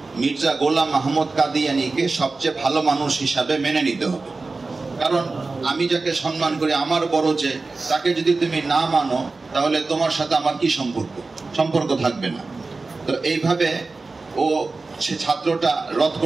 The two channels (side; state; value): left; quieter; 3.7 dB